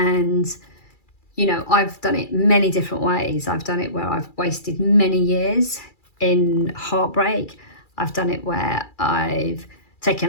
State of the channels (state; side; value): late; right; 2.3 ms